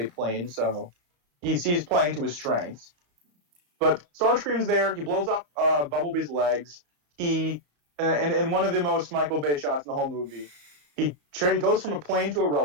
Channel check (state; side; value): late; left; 34 ms